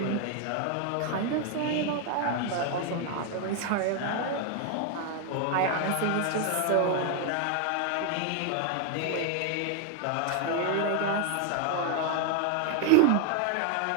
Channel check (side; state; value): both; different; correlation 0.01